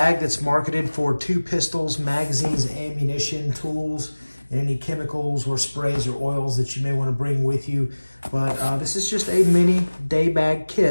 that's marketed for 2 pistols, magazines, ammunition, tools, and any chemicals or sprays or oils that you may want to bring with you. But this is just a mini day bag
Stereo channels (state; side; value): inverted; both; correlation -1.00